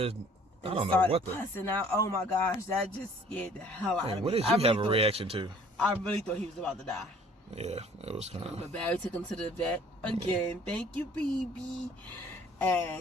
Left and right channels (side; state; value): both; normal; correlation 0.54